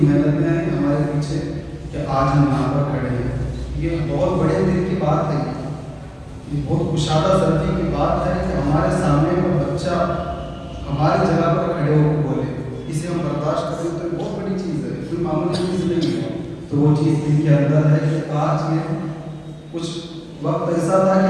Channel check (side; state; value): both; identical; correlation 1.00